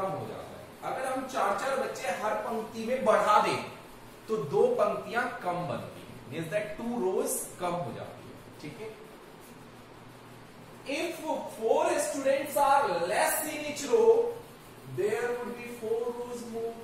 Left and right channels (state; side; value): identical; both; correlation 1.00